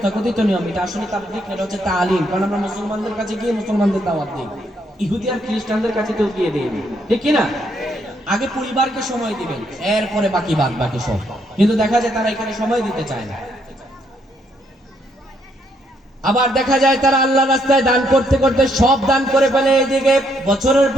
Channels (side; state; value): both; normal; correlation 0.73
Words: নিয়ম, এটা আসলে তাবলীগ এটা হচ্ছে তালিম, কারণ আমরা মুসলমানদের কাছে গিয়ে মুসলমানদের দাওয়াত দিই, ইহুদি আর খ্রিস্টানদের কাছে তো গিয়ে দিই, ঠিক কি না? আগে পরিবারকে সময় দিবেন, এরপরে বাকি সব। কিন্তু দেখা যায় তারা এখানে সময় দিতে চায় না। আবার দেখা যায় তারা আল্লাহ রাস্তায় দান করতে করতে সব দান করে ফেলে, এদিকে বছরের